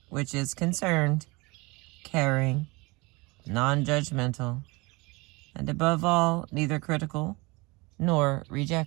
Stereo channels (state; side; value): quieter; left; 25.2 dB